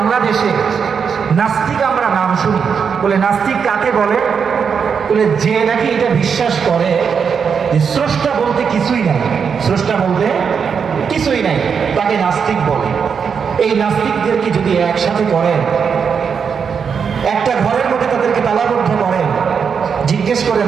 নাস্তিক আমরা নাম শুনি। বলে নাস্তিক কাকে বলে? বলে যে নাকি এটা বিশ্বাস করে যে স্রষ্টা বলতে কিছুই নাই, স্রষ্টা বলতে কিছুই নাই, তাকে নাস্তিক বলে। এই নাস্তিকদেরকে যদি একসাথে করেন, একটা ঘরের মধ্যে তাদেরকে তালাবদ্ধ করেন, জিজ্ঞেস করেন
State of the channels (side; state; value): left; quieter; 6.5 dB